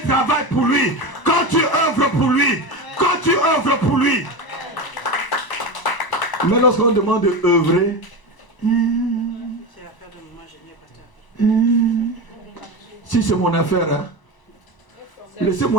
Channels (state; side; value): late; right; 1.0 ms